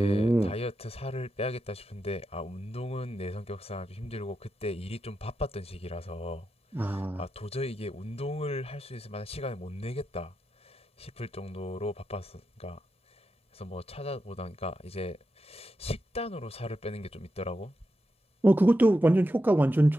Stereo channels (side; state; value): both; normal; correlation 0.88